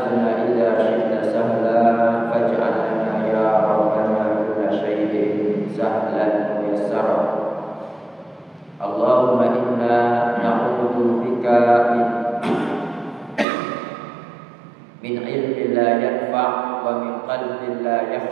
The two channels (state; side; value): drops out; left; at 13.5 s